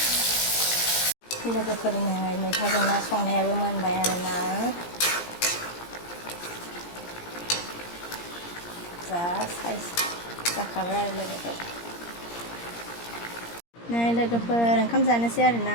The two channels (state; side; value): late; right; 17 ms